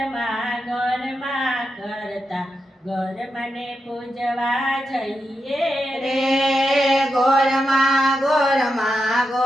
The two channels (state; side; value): normal; both; correlation 0.87